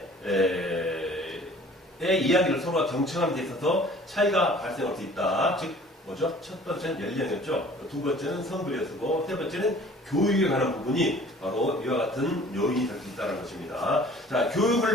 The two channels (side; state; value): both; normal; correlation 0.50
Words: 이야기를 서로가 경청하는 데 있어서 차이가 발생할 수 있다. 즉, 뭐죠? 첫 번째는 연령이었죠. 두 번째는 성별이었고, 세 번째는 교육에 관한 부분이 바로 이와 같은 요인이 될 수 있다는 것입니다. 자,